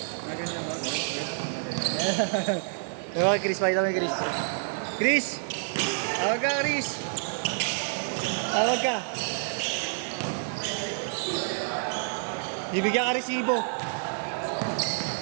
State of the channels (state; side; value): silent; left; digital silence